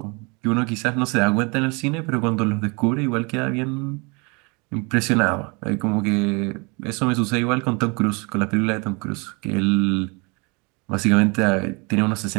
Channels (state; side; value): quieter; left; 29.8 dB